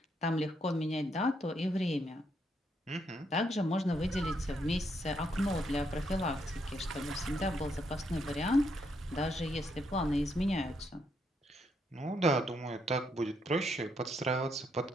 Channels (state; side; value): normal; both; correlation 0.76